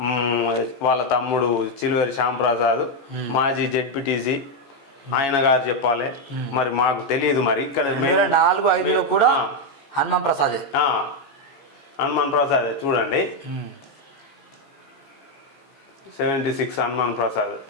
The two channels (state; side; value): late; right; 14 ms